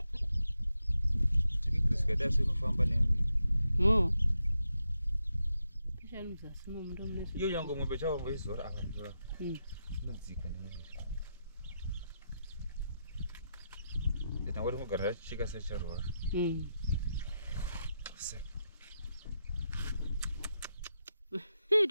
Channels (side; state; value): both; inverted; correlation -0.85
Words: Oh. Yo yango ngombe chao ngizora akanzora. Ndzika nemiri. Ndina wari mugara chika secharwa. You